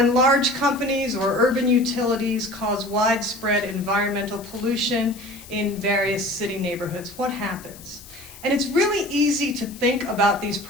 large companies or urban utilities cause widespread environmental pollution in various city neighborhoods, what happens? And it's really easy to think about these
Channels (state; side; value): noise; left; hiss, 19 dB below the sound